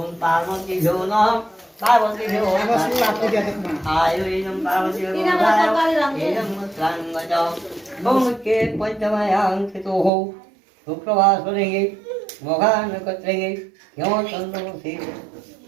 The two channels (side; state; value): left; drops out; at 10.1 s